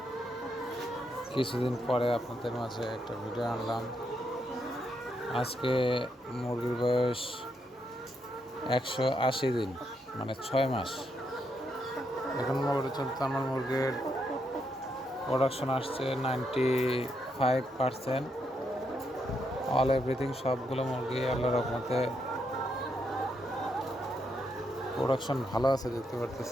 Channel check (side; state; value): both; normal; correlation 0.79